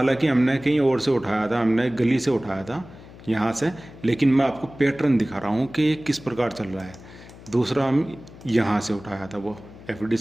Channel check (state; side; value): noise; left; hum, 19 dB below the sound